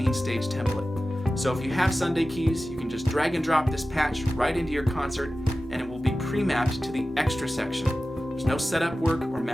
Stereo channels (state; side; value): normal; both; correlation 0.95